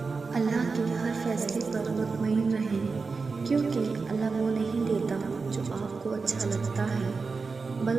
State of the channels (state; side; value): quieter; left; 4.5 dB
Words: اللہ کے ہر فیصلے پر مطمئن رہیں، کیونکہ اللہ وہ نہیں دیتا جو آپ کو اچھا لگتا ہے،